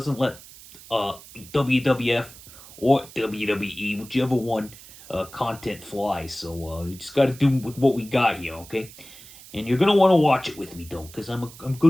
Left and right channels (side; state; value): right; noise; hiss, 19 dB below the sound